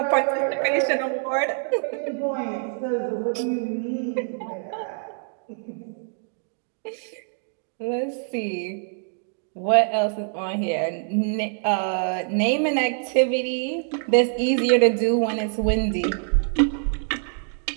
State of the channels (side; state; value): left; silent; 58 dB below the other